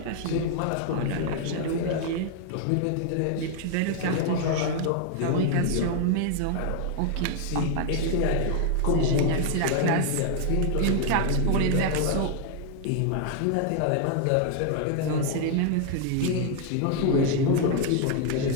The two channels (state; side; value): different; both; correlation 0.00